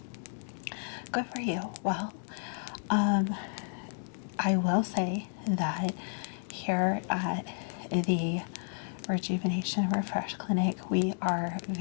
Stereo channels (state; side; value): silent; right; digital silence